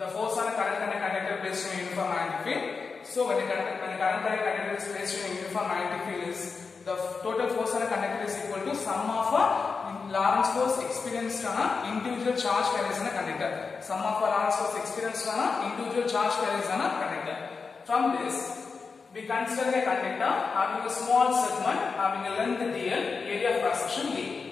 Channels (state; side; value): quieter; right; 4.9 dB